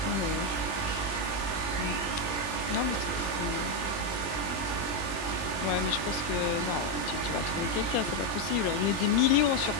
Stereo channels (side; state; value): right; late; 20 ms